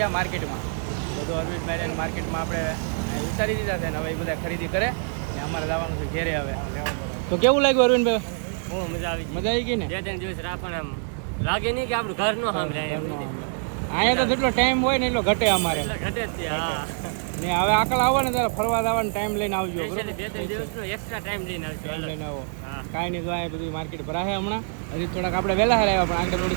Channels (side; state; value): left; silent; 62 dB below the other